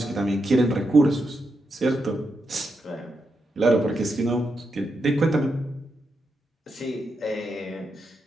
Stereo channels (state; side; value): normal; both; correlation 0.84